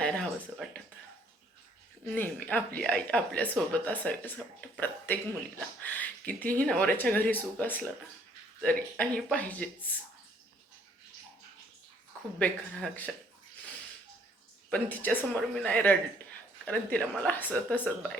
राहावंसं वाटत. नेहमी आपली आई आपल्यासोबत असावी असं वाटतं प्रत्येक मुलीला. कितीही नवऱ्याच्या घरी सुख असलं ना तरी आई पाहिजेच. खूप बेकार हा क्षण. पण तिच्यासमोर मी नाही रडले कारण तिला मला हसत हसत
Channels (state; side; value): normal; both; correlation 0.63